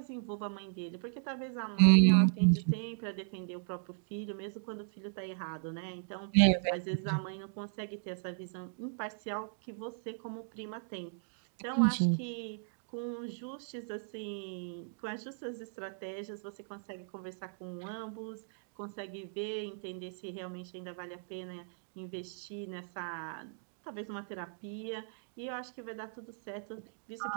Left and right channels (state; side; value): silent; left; digital silence